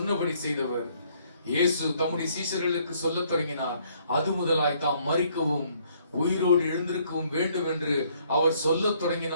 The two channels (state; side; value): inverted; both; correlation -0.66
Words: செய்தவர். இயேசு தம்முடைய சீஷர்களுக்கு சொல்லத் தொடங்கினார். அது முதலாய் தாம் மரிக்கவும் உயிரோடு எழுந்திருக்கவும் வேண்டும் என்று அவர் சொல்லத்